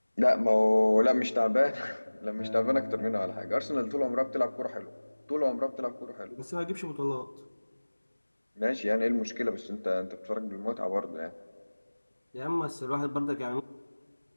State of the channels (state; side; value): inverted; both; correlation -1.00